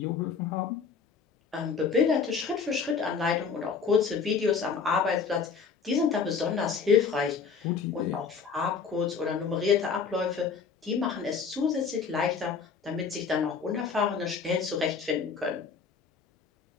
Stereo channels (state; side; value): quieter; right; 5.7 dB